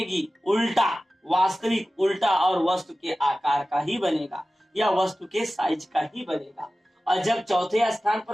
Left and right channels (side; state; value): both; normal; correlation 0.96